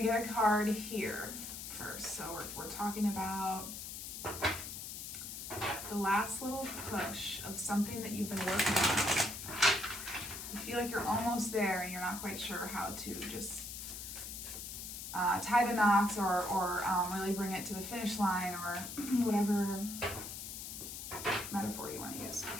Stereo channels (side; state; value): left; noise; hiss, 8 dB below the sound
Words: get a card here first. So we're talking about the last little push of something that you've been working on. You feel like you're almost there and you're not quite sure how to just tie the knots or really bring it to the finish line, or whatever metaphor you want to use